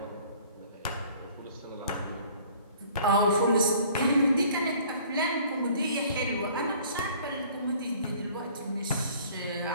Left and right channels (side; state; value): both; inverted; correlation -0.53